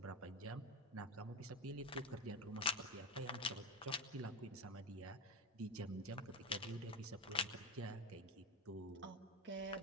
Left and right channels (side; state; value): both; normal; correlation 0.15